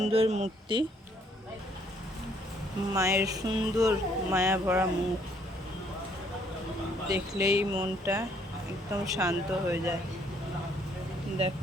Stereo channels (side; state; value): both; normal; correlation 0.66